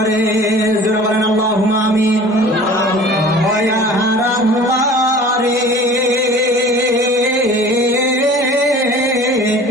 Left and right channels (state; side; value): normal; both; correlation 0.44